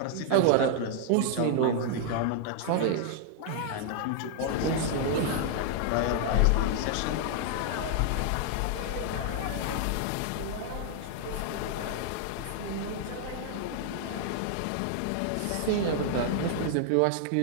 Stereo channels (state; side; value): different; both; correlation 0.00